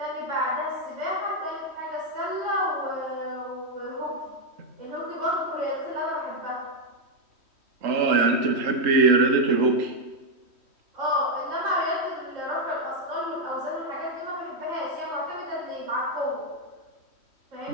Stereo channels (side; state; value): left; late; 3.1 ms